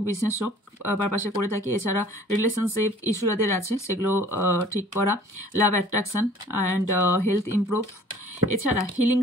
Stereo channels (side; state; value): both; normal; correlation 0.51